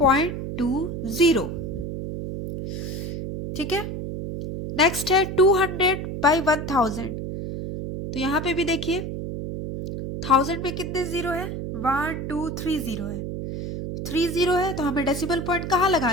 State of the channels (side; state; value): right; noise; hum, 5 dB below the sound